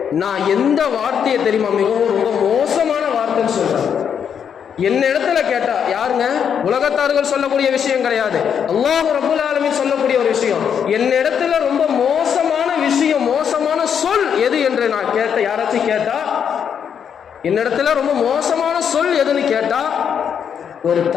நான் எந்த வார்த்தையை தெரியுமா மிகவும் ரொம்ப மோசமான வார்த்தைன்னு சொல்றேன். என்ன இடத்துல கேட்டா, யாருங்க, உலகத்தார்கள் சொல்லக்கூடிய விஷயம் கிடையாது, அல்லாஹ் ரப்பல் ஆலமீன் சொல்லக்கூடிய ஒரு விஷயம். என்ன இடத்துல ரொம்ப மோசமான விஷயம், மோசமான சொல் எது என்று நான் கேட்ட, யாராச்சும் கேட்டா என்னிடத்துல ரொம்ப மோசமான சொல் எதுன்னு கேட்டா, ஒரு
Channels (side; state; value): right; quieter; 7.8 dB